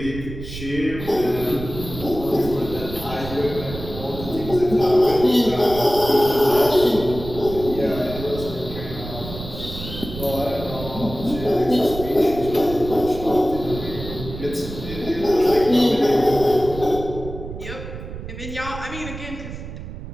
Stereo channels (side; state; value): right; noise; rumble, 10 dB below the sound